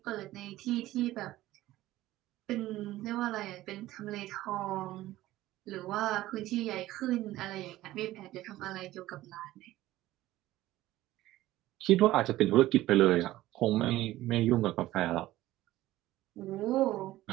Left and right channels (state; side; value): quieter; left; 15.9 dB